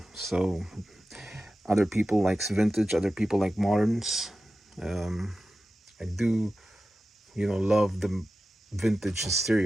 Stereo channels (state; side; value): normal; both; correlation 0.94